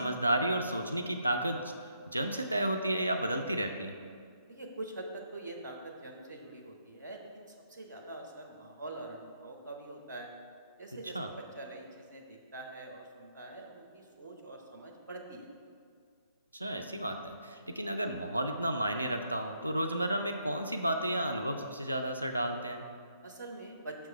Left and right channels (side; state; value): both; inverted; correlation -0.75